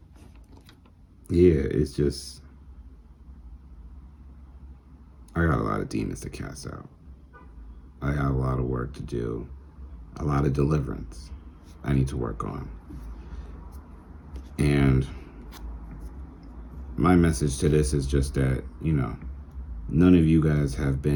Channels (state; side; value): identical; both; correlation 1.00